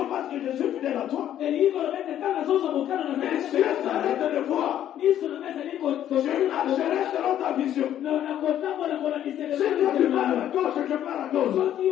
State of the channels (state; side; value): quieter; right; 11.1 dB